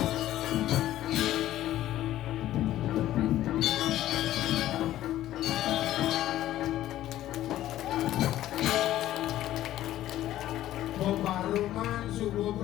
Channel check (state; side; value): quieter; right; 13.6 dB